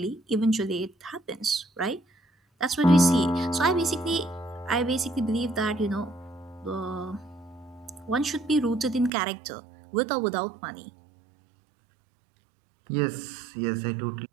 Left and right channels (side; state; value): left; drops out; at 9.1 s